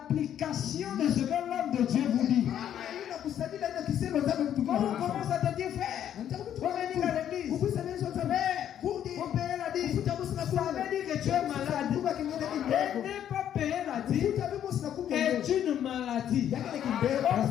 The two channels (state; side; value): quieter; right; 10.2 dB